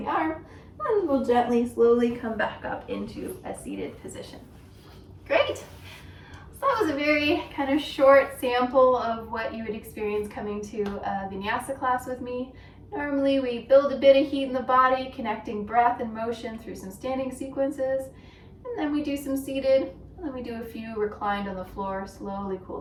arm, and we'll gently, slowly come back up into a seated position. Great. So that was a very kind of short sample of what you would experience coming to a Vinyasa class with me. Normally we build a bit of heat in the body, connecting breath and motion through some standing sequences, and then we do some seated, and then we do a few reclined on the floor, slowly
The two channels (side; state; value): both; identical; correlation 1.00